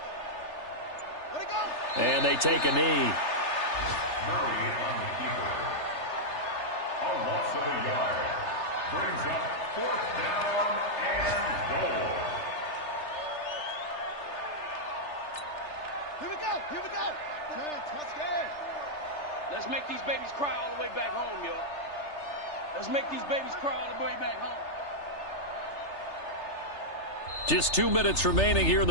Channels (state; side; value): late; right; 3.3 ms